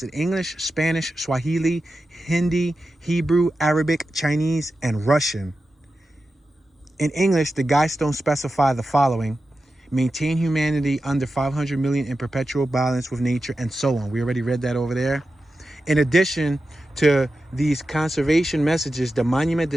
in English, Spanish, Swahili, Hindi, Hebrew, Arabic, Chinese, and Russian. In English, the guidestones specify the following: maintain humanity under 500 million in perpetual balance with nature, and so on. We already read that over there. In addition to these conservation messages, the monument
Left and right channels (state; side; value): normal; both; correlation 0.92